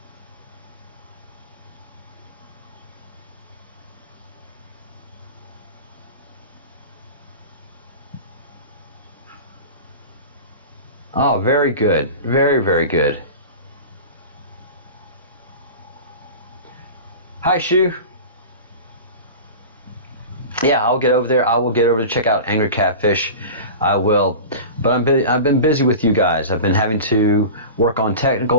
Oh, very good. Very, very good. Hi, Shu. Yeah, I'll get over there. I will get over to check out Angry Catfish. I will. But I've been busy with you guys. I've been having to work on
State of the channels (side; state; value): both; inverted; correlation -0.32